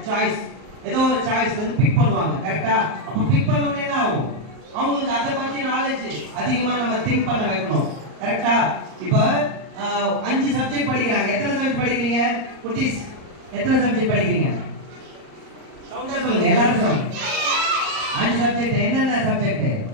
ஒரு சாய்ஸ் வந்து பிக் பண்ணுவாங்க. கரெக்டா? அப்ப பிக் பண்ண உடனே என்ன ஆகும்? அவங்களுக்கு அதை பத்தி நாலேஜ் அதிகமா நம்ம திங்க் பண்ண வைக்கணும். கரெக்டா? இப்ப 5 சப்ஜெக்ட் படிக்கிறாங்க. எத்தனை சப்ஜெக்ட் படிக்கிறீங்க குட்டீஸ்? எத்தனை சப்ஜெக்ட் படிக்கிறீங்க? சவுண்டா சொல்லுங்க எல்லாரும். 5 சப்ஜெக்ட். என்னென்ன சப்ஜெக்ட்?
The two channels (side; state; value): left; late; 38 ms